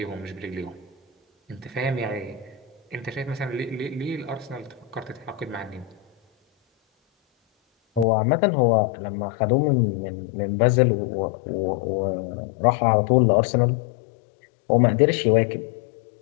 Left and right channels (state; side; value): drops out; right; at 8.1 s